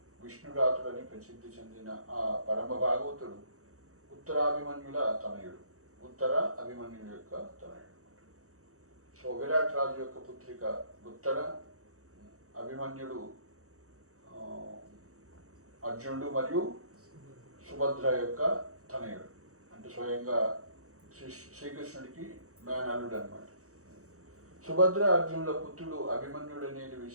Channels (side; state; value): left; late; 0.65 ms